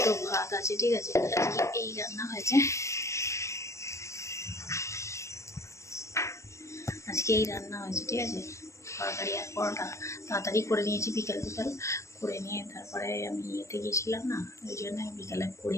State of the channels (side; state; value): right; late; 0.14 ms